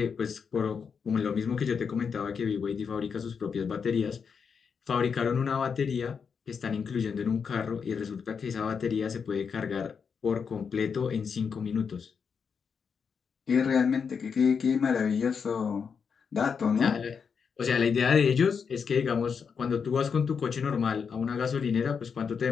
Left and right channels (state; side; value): quieter; right; 6.2 dB